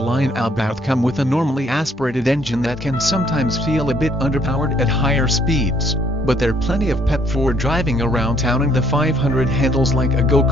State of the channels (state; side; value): normal; both; correlation 0.65